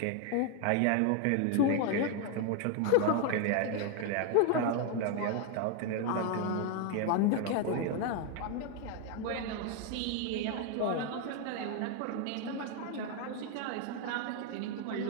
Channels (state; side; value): different; both; correlation 0.01